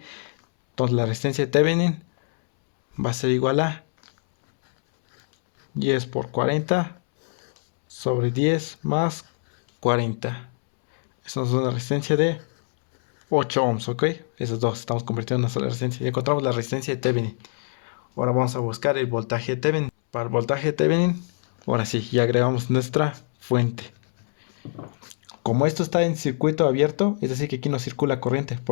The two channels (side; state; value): right; silent; 63 dB below the other